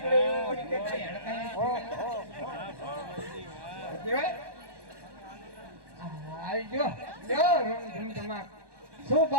એવો નીકળે કેવાય. આવી જો જો રૂમ ધમધમાટ. શું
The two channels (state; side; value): late; left; 1.1 ms